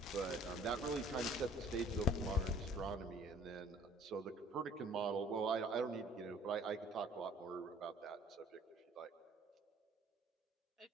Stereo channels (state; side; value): normal; both; correlation 0.55